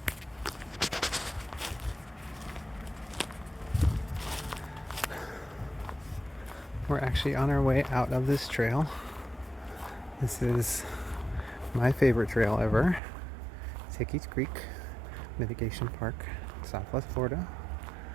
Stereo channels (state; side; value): drops out; left; at 13.0 s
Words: We're actually on our way out of this trail. This is my favorite trail ever. Hickey's Creek Mitigation Park, Southwest Florida.